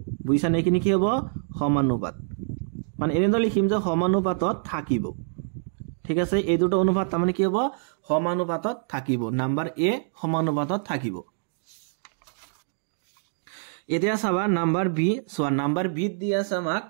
বুজিছা নে কিনি কি হ'ব সমানুপাত মানে এনেদৰে লিখিম যে সমানুপাতত থাকিব ঠিক আছে এই দুটো অনুপাত তাৰ মানে কি হ'ব সমানুপাতত থাকিব নাম্বাৰ এ সমানুপাতত থাকিব এতিয়া চাবা নাম্বাৰ বি সোৱা নাম্বাৰ বি দি আছে আমাক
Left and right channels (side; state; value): left; silent; digital silence